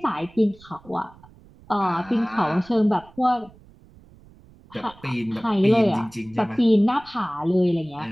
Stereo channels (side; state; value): right; noise; rumble, 25 dB below the sound